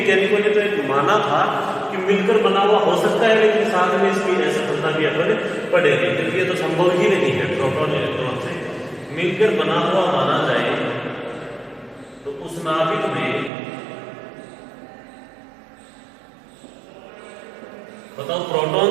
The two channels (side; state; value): left; drops out; at 13.5 s